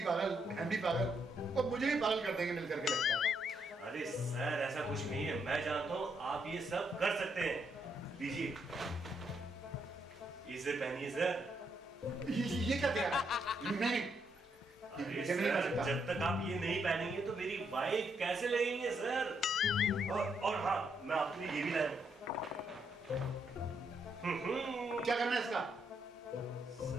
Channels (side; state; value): both; normal; correlation 0.77